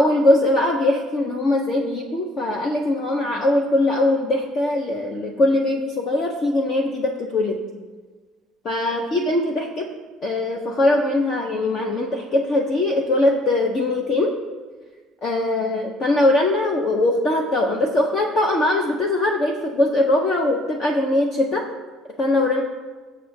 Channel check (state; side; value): normal; both; correlation 0.61